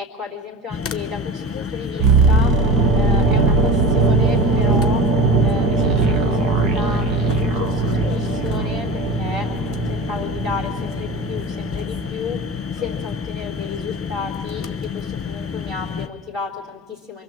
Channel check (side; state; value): both; normal; correlation 0.31